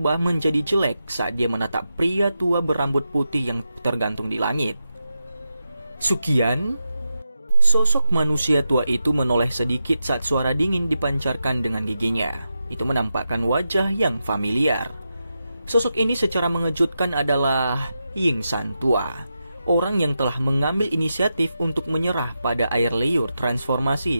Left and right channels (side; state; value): both; inverted; correlation -0.88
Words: menjadi jelek saat dia menatap pria tua berambut putih yang tergantung di langit. Sukian? Sosok manusia tua itu menoleh sedikit saat suara dingin dipancarkan dengan giginya. Itu menampakkan wajah yang familiar. Sosok ini secara mengejutkan adalah Yingsan tua, orang yang telah mengambil inisiatif untuk menyerah pada air liur